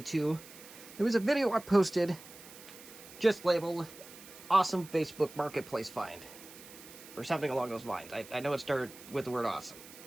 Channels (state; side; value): noise; right; hiss, 18 dB below the sound